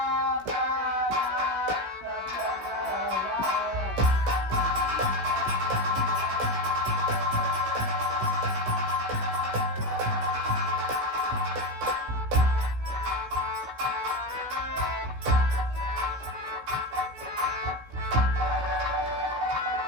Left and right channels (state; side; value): late; left; 16 ms